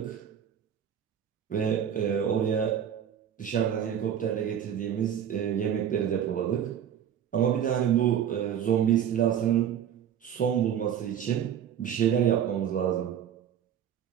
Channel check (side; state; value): left; quieter; 9.2 dB